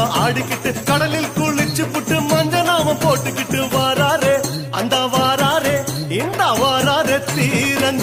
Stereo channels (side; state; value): both; identical; correlation 1.00